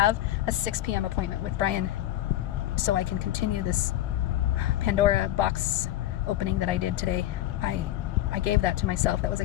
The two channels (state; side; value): quieter; right; 13.8 dB